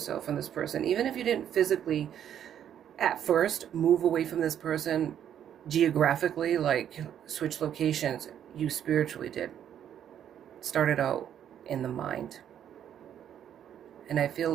from this person. Even if you didn't physically, at first, move away from this person geographically, like switch locations, you spiritually did. Started out in the mind. And I feel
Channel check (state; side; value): quieter; left; 9.7 dB